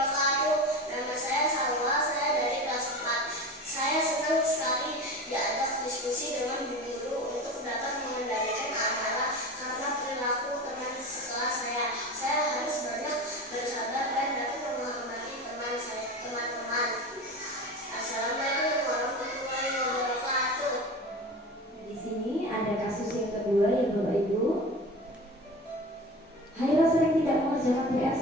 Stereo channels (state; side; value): normal; both; correlation 0.31